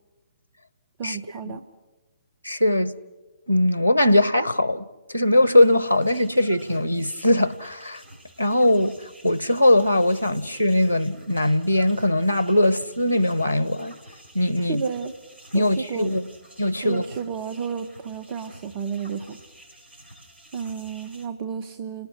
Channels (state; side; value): inverted; both; correlation -0.88